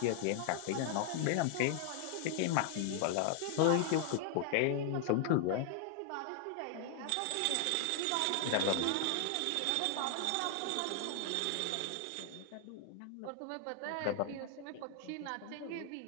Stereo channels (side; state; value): both; different; correlation 0.00